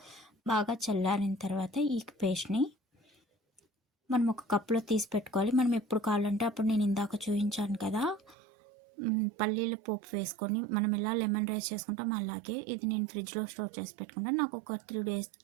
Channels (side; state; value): left; drops out; at 8.3 s